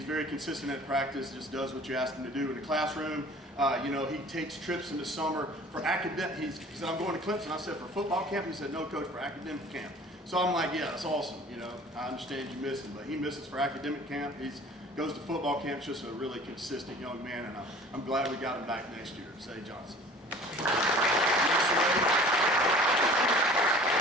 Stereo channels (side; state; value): both; normal; correlation 0.46